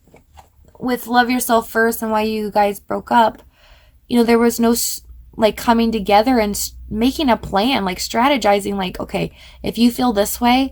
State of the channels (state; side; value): identical; both; correlation 1.00